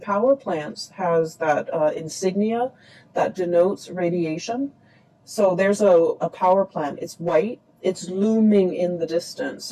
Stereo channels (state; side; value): identical; both; correlation 1.00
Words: power plants has that insignia that denotes radiation. So there's a power plant. It's white. It's looming in the distance.